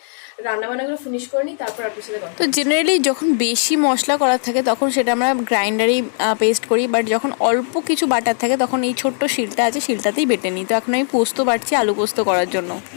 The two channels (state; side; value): silent; right; 59 dB below the other